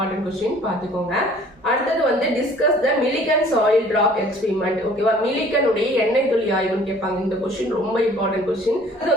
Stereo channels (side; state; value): both; normal; correlation 0.53